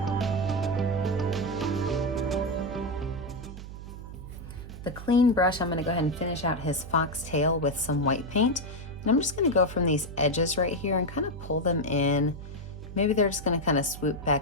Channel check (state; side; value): noise; right; hum, 12 dB below the sound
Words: The clean brush, I'm going to go ahead and finish out his fox tail with some white paint. And I'm just going to go from these edges right here and kind of pull them in. Maybe they're just going to kind of swoop